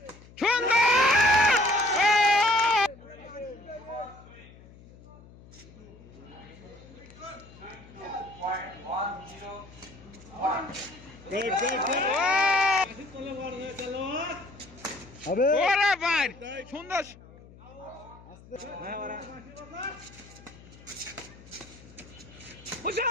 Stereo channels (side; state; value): left; noise; hum, 21 dB below the sound